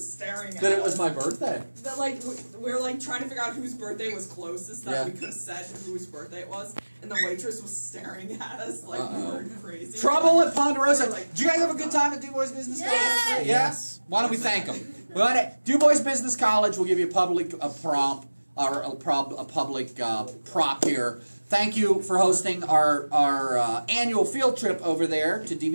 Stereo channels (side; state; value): both; inverted; correlation -1.00